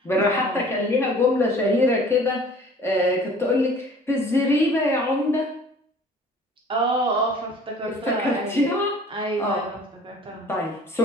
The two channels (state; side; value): normal; both; correlation 0.50